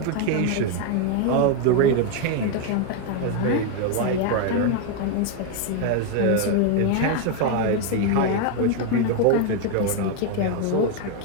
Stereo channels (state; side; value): different; both; correlation 0.01